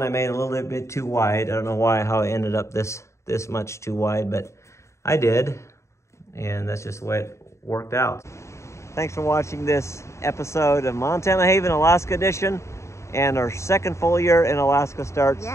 I made a little bit too wide. I don't know how I ended up this much too wide, but I did. And that's just the way it worked out. Thanks for watching this episode of Montana Haven Alaska Edition. And our second full year in Alaska starts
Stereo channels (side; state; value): right; late; 0.14 ms